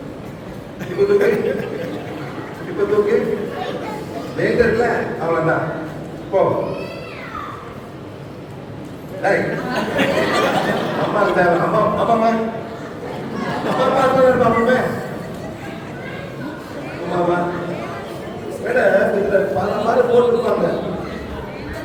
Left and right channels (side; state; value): both; identical; correlation 1.00